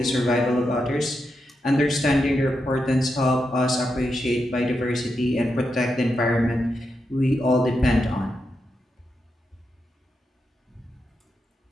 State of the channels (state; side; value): normal; both; correlation 0.85